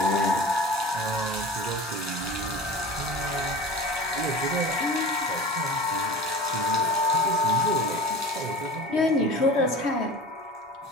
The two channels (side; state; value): both; normal; correlation 0.36